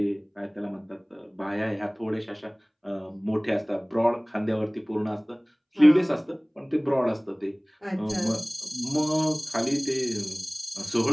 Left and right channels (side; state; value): both; identical; correlation 1.00